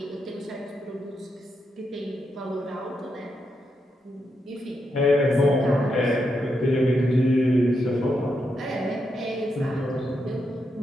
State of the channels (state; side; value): normal; both; correlation 0.83